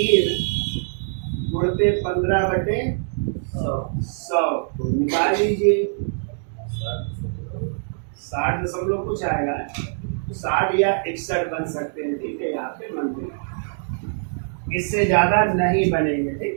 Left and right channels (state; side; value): silent; left; digital silence